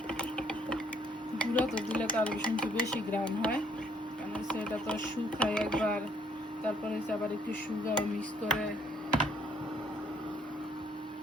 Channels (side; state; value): both; normal; correlation 0.65